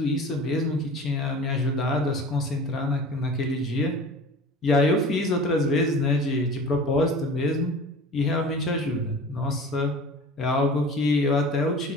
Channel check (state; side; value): normal; both; correlation 0.39